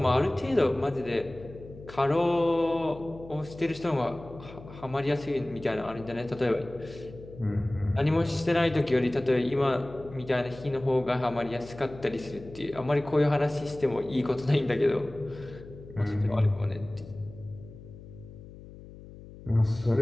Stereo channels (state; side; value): noise; left; hum, 17 dB below the sound